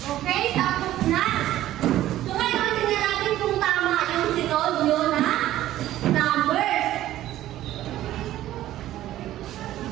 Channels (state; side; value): quieter; left; 13.9 dB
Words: tapos na. So ngayon, tingnan natin kung tama yung sinod nyo na numbers.